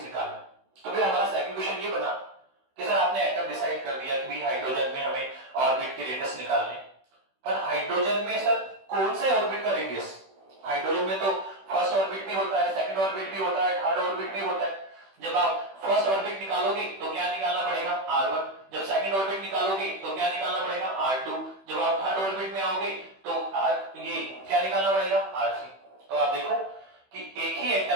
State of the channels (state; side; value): late; left; 16 ms